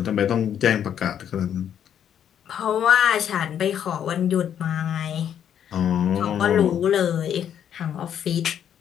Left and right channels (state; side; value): quieter; right; 9.3 dB